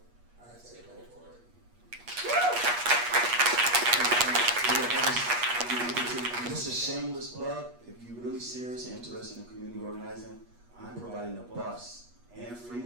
I say go for it. Just a shameless plug, if you're really serious and interested in community organizing, I'm providing a bus and free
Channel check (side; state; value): left; late; 8.3 ms